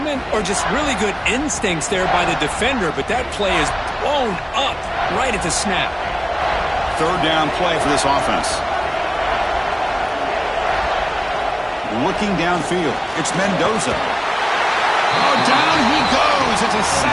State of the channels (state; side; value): identical; both; correlation 1.00